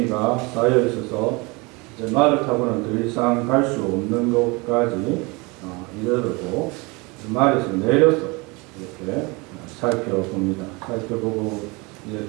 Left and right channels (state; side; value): quieter; left; 26.7 dB